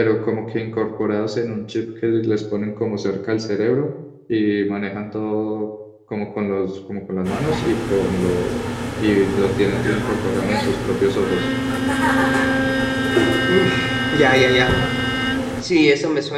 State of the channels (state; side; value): identical; both; correlation 1.00